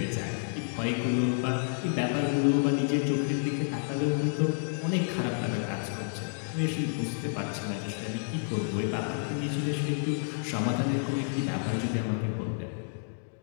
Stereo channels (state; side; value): silent; right; digital silence